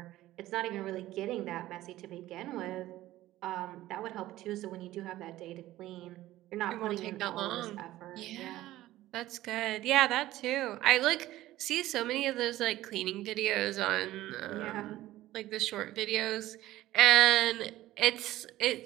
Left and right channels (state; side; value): quieter; left; 15.5 dB